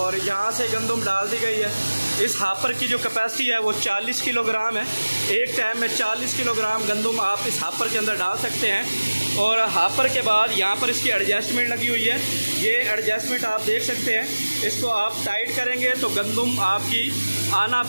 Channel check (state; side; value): inverted; both; correlation -1.00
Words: यहाँ से गंदम डाल दी गई है। इस हापर की जो कैपेसिटी है वो 40 किलोग्राम है। एक टाइम में 40 किलोग्राम गंदम आप इस हापर के अंदर डाल सकते हैं। और हापर के बाद यहाँ पर इसकी एडजस्टमेंट लगी हुई है। ये एडजस्टमेंट आप देख सकते हैं। इसको आप टाइट करेंगे तो गंदम आपकी आना